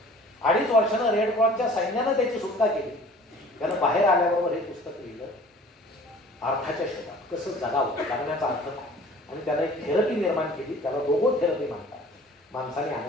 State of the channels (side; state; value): both; normal; correlation 0.48